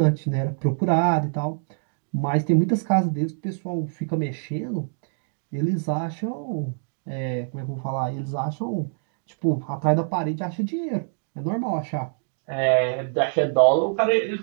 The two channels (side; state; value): left; silent; digital silence